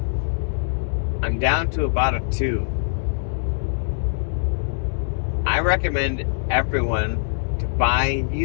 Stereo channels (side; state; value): right; silent; digital silence